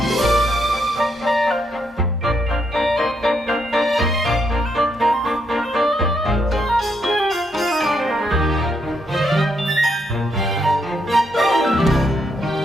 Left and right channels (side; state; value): both; normal; correlation 0.77